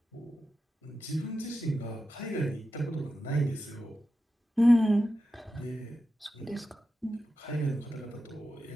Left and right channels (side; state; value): both; normal; correlation 0.90